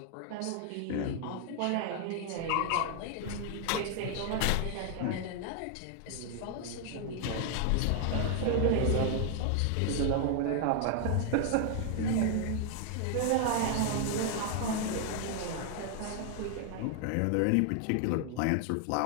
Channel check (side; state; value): both; different; correlation 0.00